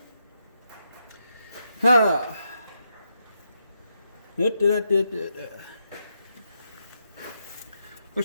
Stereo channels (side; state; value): both; inverted; correlation -0.82